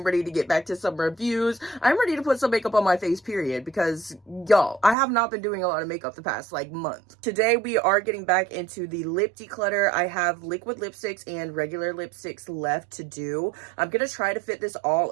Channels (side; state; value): left; drops out; at 5.0 s